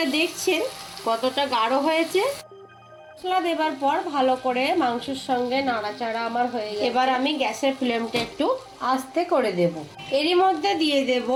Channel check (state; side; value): identical; both; correlation 1.00